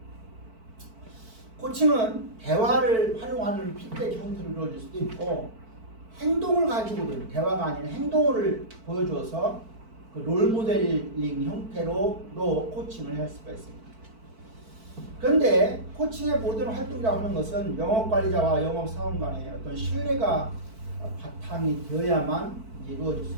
코칭은 대화를 활용하는 피드백 형태로 이루어질 수도 있고 행동을 가지고든 대화가 아닌 행동을 보여줘서 그 롤모델링 형태로도 코칭을 할 수가 있습니다. 그런데 코칭의 모든 활동이라고 하는 것은 영업관리자와 영업사원 간의 어떤 신뢰가 바탕이 되어야만 이루어질 수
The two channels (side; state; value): left; late; 4.5 ms